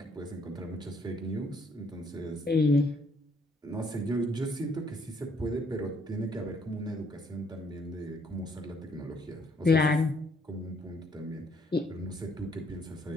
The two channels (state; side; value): normal; both; correlation 0.67